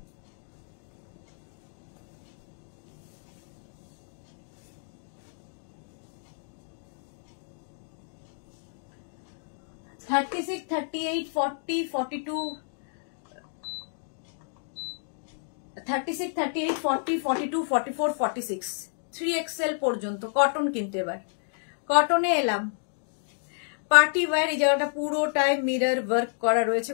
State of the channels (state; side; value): silent; right; digital silence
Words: (36, 38, 40, 42, 36, 38, 40, 42, 44, 46, 3XL পর্যন্ত কটন। কিন্তু এবার কটনে এলাম, পার্টি ওয়্যার, এই জায়গাটা পুরোটাই মিরর ওয়ার্ক করা রয়েছে,